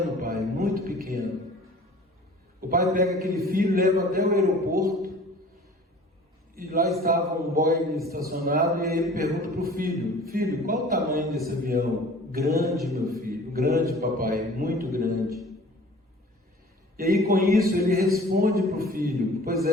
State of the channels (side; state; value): both; normal; correlation 0.47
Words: pai, muito pequeno. O pai pega aquele filho, leva até o aeroporto, e lá estava um Boeing estacionado, e aí ele pergunta para o filho: filho, qual o tamanho desse avião? Grande, meu filho, grande, papai, muito grande. E aí com isso ele responde para o filho: pois